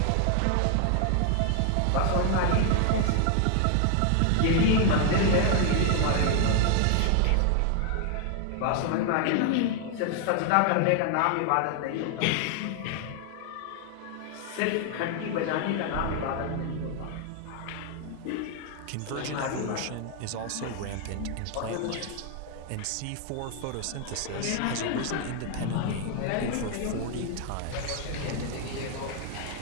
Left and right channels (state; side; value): different; both; correlation 0.00